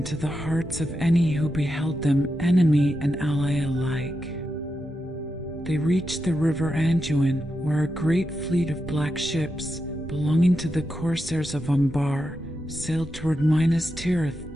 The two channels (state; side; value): normal; both; correlation 0.87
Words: the hearts of any who beheld them, enemy and ally alike. They reached the river Anduin, where a great fleet of black ships, belonging to the corsairs of Umbar, sailed toward Minas Tirith